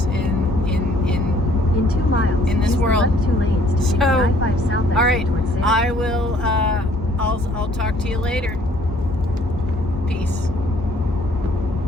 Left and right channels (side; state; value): both; normal; correlation 0.60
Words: in 2 miles in this world. 2 lanes to I-5 south. All right, I will. I'll talk to you later. Peace.